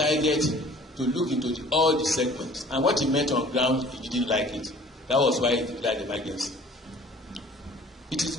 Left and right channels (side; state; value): both; normal; correlation 0.50